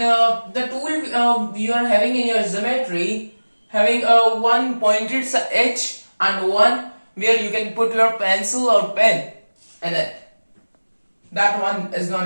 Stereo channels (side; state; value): both; inverted; correlation -1.00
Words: tool you are having in your geometry, having one pointed edge and one where you can put your pencil or pen in it. That one is known